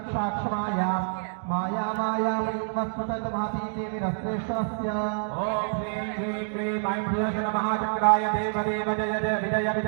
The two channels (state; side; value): silent; left; digital silence